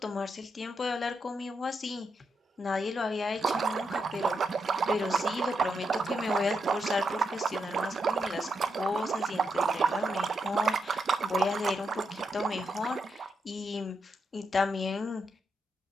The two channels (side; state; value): both; normal; correlation 0.82